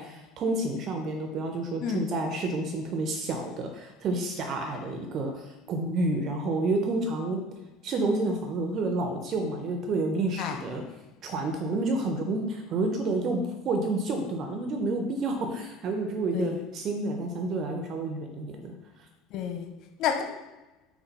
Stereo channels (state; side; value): normal; both; correlation 0.46